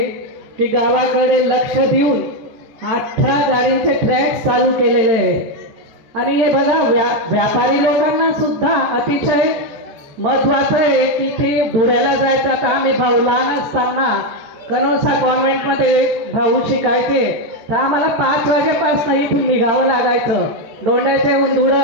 की गावाकडे लक्ष देऊन 18 गाडींचे ट्रॅक चालू केलेले आहे आणि हे बघा व्यापारी लोकांना सुद्धा अतिशय महत्त्वाचं आहे की ते धुळ्याला जायचं। आता आम्ही भाऊ लहान असताना कनोसा कॉन्व्हेंटमध्ये भाऊ शिकायचे तर आम्हाला 5 वाजेपासून इथून निघावं लागायचं, दोंड्याच्याहून धुळं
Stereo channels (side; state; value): left; late; 14 ms